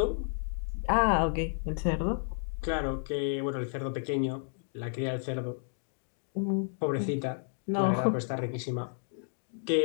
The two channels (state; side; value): silent; right; digital silence